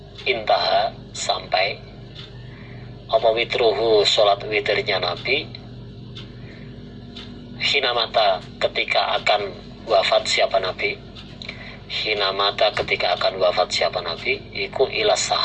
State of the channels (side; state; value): both; identical; correlation 1.00